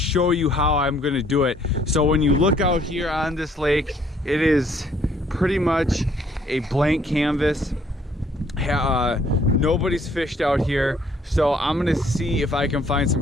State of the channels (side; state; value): both; normal; correlation 0.63